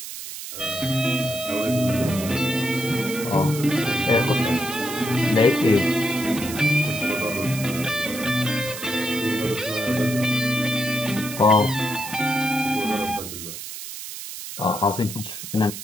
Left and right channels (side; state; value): right; noise; hiss, 9 dB below the sound